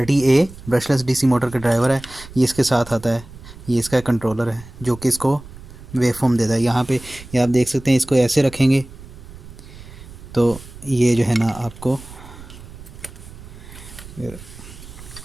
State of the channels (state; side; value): noise; right; rumble, 17 dB below the sound